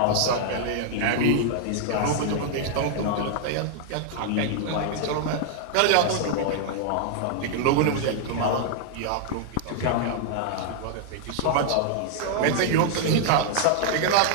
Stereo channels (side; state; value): both; different; correlation 0.00